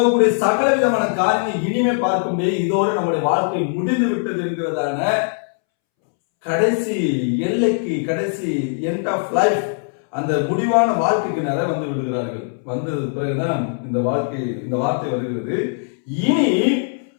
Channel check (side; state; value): right; silent; 65 dB below the other